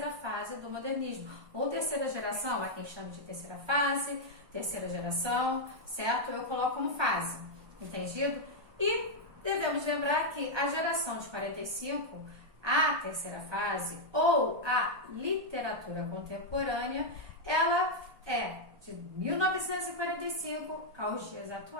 fase do modernismo, ou terceira geração, há quem chame de terceira fase, terceira geração, certo? Eu coloco como fase, entendido? E devemos lembrar que a geração de 45, a terceira fase, ou a literatura contemporânea, ela é de 1945 aos dias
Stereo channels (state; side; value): late; left; 1.2 ms